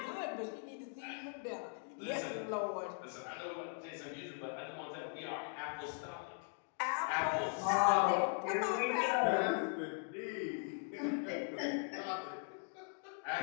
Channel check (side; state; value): right; silent; 51 dB below the other